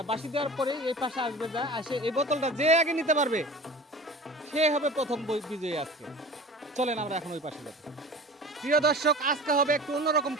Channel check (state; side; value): normal; both; correlation 0.39